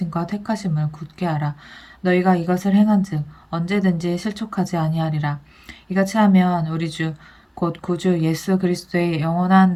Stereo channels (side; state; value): both; identical; correlation 1.00